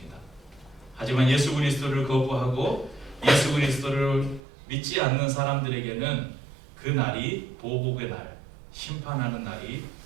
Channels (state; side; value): drops out; left; at 4.4 s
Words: 하지만 예수 그리스도를 거부하고 예수 그리스도를 믿지 않는 사람들에게는 그 날이 보복의 날, 심판하는 날이